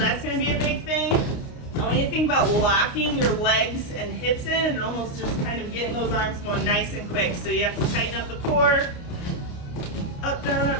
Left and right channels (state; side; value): late; right; 29 ms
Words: going to be a big thing. I want you to think about locking your legs and hips in and almost just kind of getting those arms going nice and quick. So you have to tighten up the core. Up,